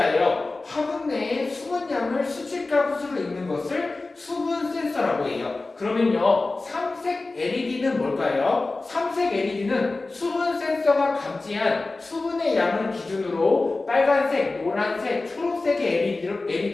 화분 내에 수분량을 수치값으로 읽는 것을 수분 센서라고 해요. 그러면요, 삼색 LED는 뭘까요? 삼색 LED는 수분 센서가 감지한 수분의 양을 기준으로 빨간색, 노란색, 초록색의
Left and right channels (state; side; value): quieter; right; 3.4 dB